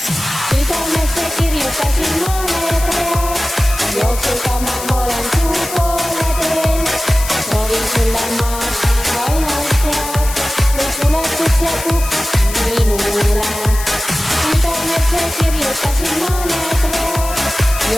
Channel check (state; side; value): noise; left; hiss, 9 dB below the sound